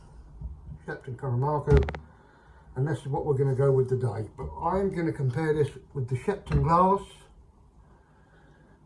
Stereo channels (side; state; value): both; identical; correlation 1.00